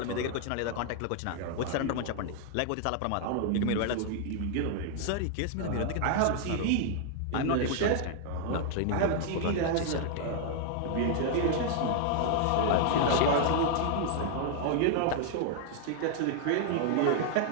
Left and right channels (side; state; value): both; different; correlation 0.00